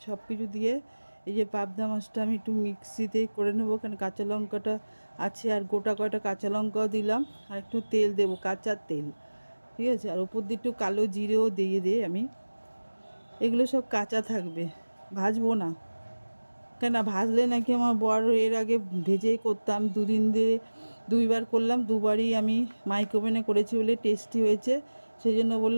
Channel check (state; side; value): inverted; both; correlation -1.00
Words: সব কিছু দিয়ে এই যে পাবদা মাছটা আমি একটু মিক্সিতে করে নেবো, কারণ কাঁচা লঙ্কাটা আছে আর গোটা কয়টা কাঁচা লঙ্কাও দিলাম, আর একটু তেল দেবো, কাঁচা তেল, ঠিক আছে। আর ওপর দিয়ে একটু কালো জিরেও দিয়ে আমি, এগুলো সব কাঁচা থাকবে, ভাজবো না। কেন ভাজলে নাকি আমার বর এর আগে ভেজেই করতাম, দুইবার করলাম, দুবারই আমি মাইক্রোওভেনে করেছি বলে টেস্টি হয়েছে। সেই জন্য